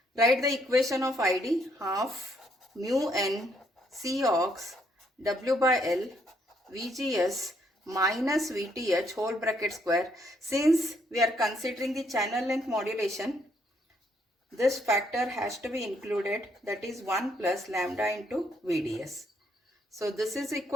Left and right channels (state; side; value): normal; both; correlation 0.71